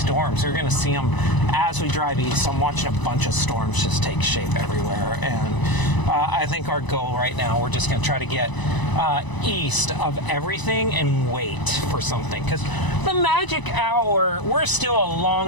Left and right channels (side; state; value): right; late; 1.0 ms